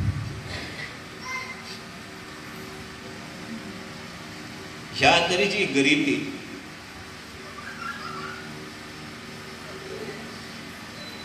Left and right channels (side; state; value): both; identical; correlation 1.00